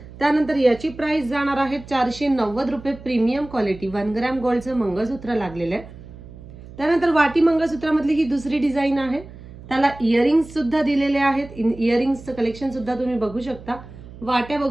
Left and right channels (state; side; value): noise; right; hum, 17 dB below the sound